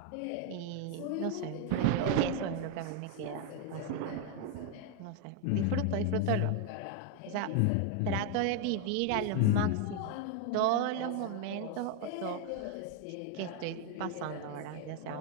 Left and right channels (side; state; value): both; different; correlation 0.01